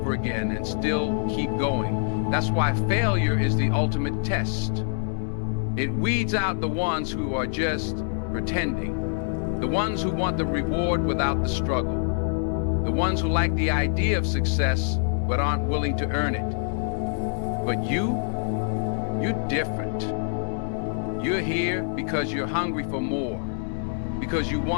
again and still keep going? That's why failure is the ultimate test. It weeds out the ones who are just pretending, the ones who want the reward without the struggle, the ones who like the idea of success but aren't willing to earn it. But you're different. You're here because you're hungry for more, because you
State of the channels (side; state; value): right; silent; digital silence